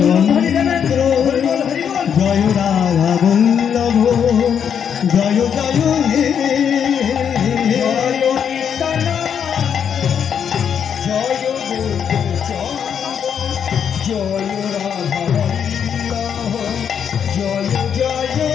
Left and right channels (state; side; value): quieter; right; 7.9 dB